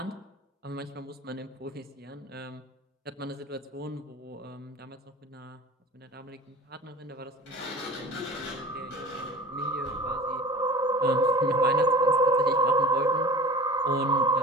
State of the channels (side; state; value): both; normal; correlation 0.39